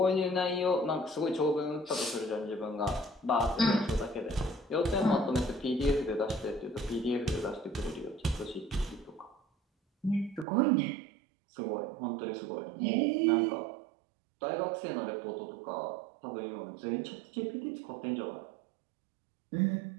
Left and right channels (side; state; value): left; drops out; at 10.5 s